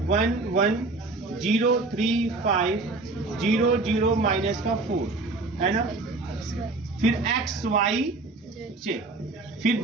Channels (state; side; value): quieter; left; 3.4 dB